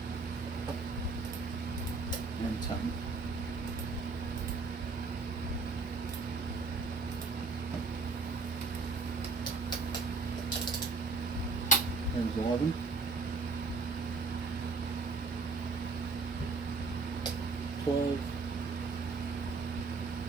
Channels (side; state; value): left; quieter; 4.1 dB